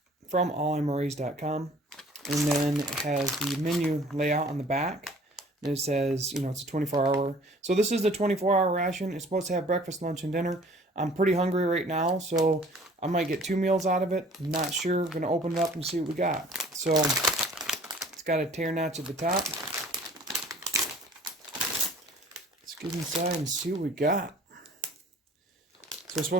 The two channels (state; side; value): normal; both; correlation 0.52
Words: From allmres.com, and then it has the menu layout on the back, and it says, you know, it's a 24-hour. So this is the 24-hour ration. It's supposed to have breakfast, lunch, and dinner. I'm pretty hungry right now, so I might get 2 meals out of it. I'm not sure. I'm gonna open it up and see what we got. So it's got a tear notch at the top. Let's get inside and see what we got. So we're